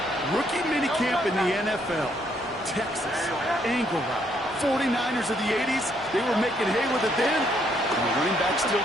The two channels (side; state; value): both; normal; correlation 0.71